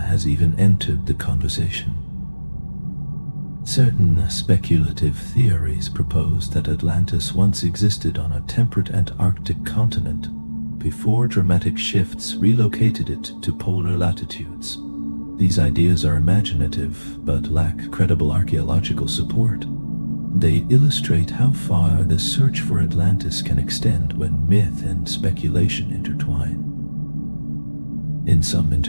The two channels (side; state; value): both; inverted; correlation -1.00